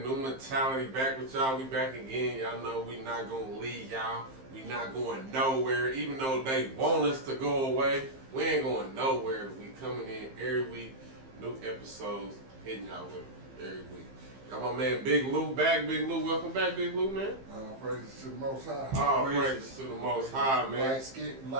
New mentality back with y'all. We back again. Y'all know we not gonna leave y'all. We not going nowhere. Even though they want us to go away, we ain't going nowhere. We coming in every week, new episodes, hitting y'all with them every week. Got my man Big Lou back. Big Lou, welcome back, Big Lou, man. All praises to the Most High. All praises to the Most High, man.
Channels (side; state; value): left; late; 15 ms